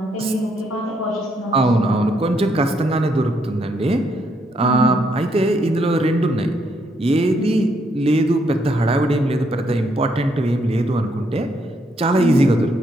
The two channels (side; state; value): both; normal; correlation 0.74